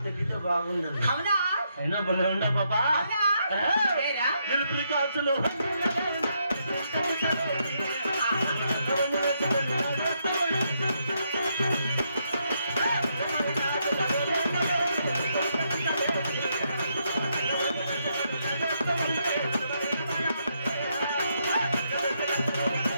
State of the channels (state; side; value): inverted; both; correlation -0.77